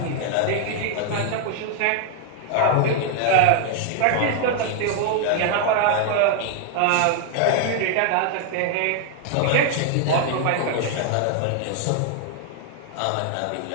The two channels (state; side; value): different; both; correlation 0.00